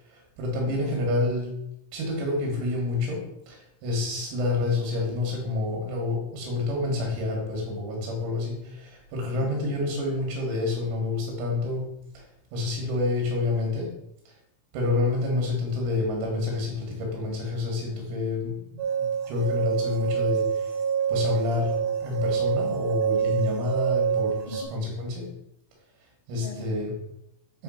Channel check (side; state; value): left; late; 17 ms